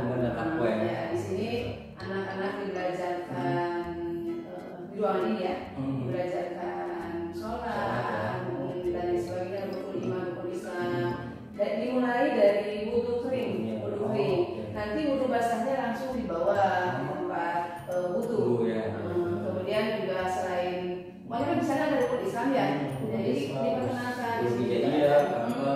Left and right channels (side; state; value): both; identical; correlation 1.00